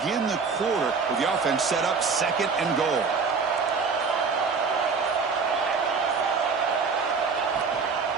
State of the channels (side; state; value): left; quieter; 5.1 dB